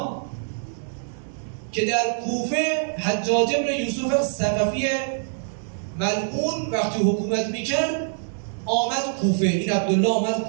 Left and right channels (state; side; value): silent; left; 62 dB below the other